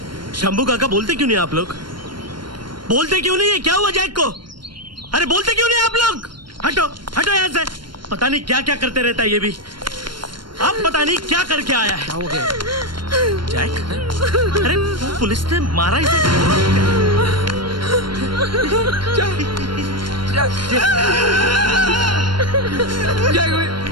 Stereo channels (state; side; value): late; left; 0.72 ms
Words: शंभू काका बोलते क्यों नहीं आप लोग? बोलते क्यों नहीं है? क्या हुआ जैक को? अरे बोलते क्यों नहीं आप लोग? हटो हटो यहाँ से। पता नहीं क्या क्या करते रहता है ये भी। अब पता नहीं क्या करके आया है। क्या हो गया जैक? अरे पुलिस ने मारा इसे। जैक